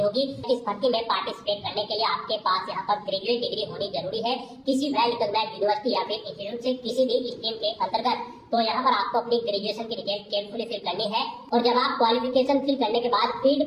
होगी। इस भर्ती में पार्टिसिपेट करने के लिए आपके पास यहाँ पर ग्रेजुएट डिग्री होनी जरूरी है किसी वेल रिकॉग्नाइज्ड यूनिवर्सिटी या फिर इंस्टीट्यूट से किसी भी स्ट्रीम के अंतर्गत। तो यहाँ पर आपको अपनी ग्रेजुएशन की डिटेल केयरफुली फिल करनी है। और जब आप क्वालिफिकेशन फिल करने के बाद फील्ड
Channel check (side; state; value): both; identical; correlation 1.00